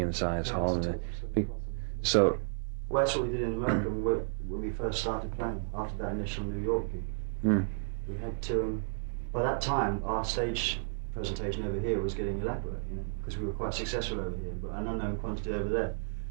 hall. It's absolutely possible. So. Well, that's what we did in America when we first started playing. After that initial New York gig, we had to. By that time, our stage presentation over here was getting elaborate, because we were quite successful over here, but an unknown quantity over there.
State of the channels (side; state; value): left; silent; 56 dB below the other